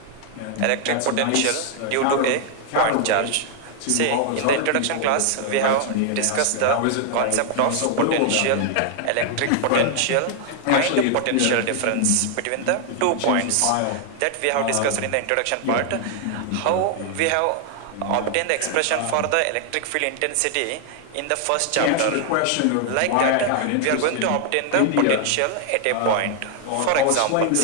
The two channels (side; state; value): both; different; correlation 0.00